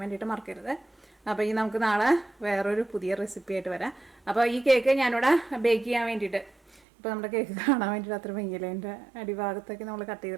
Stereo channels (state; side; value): drops out; left; at 6.8 s